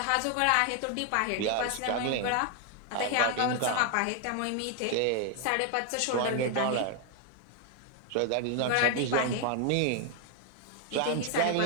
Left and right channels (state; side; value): different; both; correlation 0.00